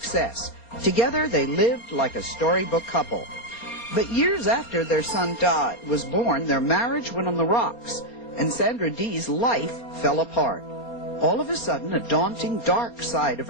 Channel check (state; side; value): late; right; 4.3 ms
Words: Together, they lived like a storybook couple. But years after their son Todd was born, their marriage went on the rocks, and Sandra Dee's life fell apart. All of a sudden, a daunting, dark side of